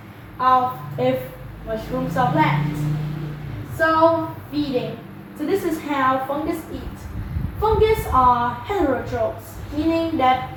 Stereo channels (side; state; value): both; identical; correlation 1.00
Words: of if mushrooms are plants. So feeding. So this is how fungus eat. Fungus are heterotrophs, meaning that